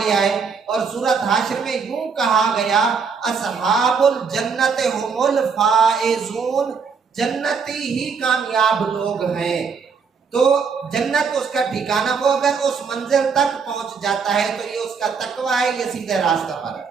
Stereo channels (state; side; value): quieter; left; 5.7 dB